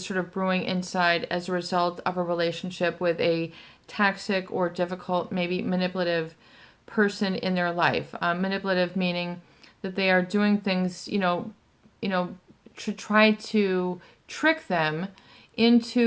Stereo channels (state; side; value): identical; both; correlation 1.00